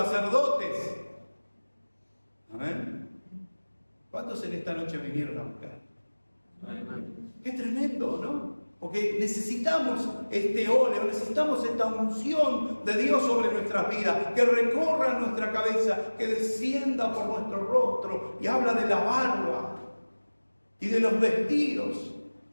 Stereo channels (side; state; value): both; inverted; correlation -1.00